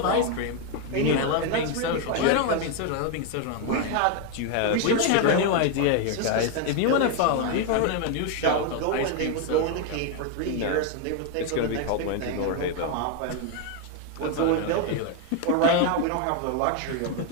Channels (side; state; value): both; different; correlation 0.01